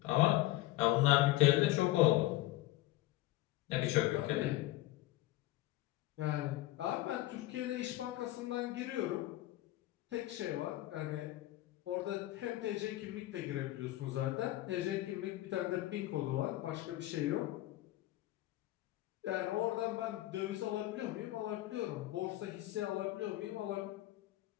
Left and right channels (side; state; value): right; quieter; 16.5 dB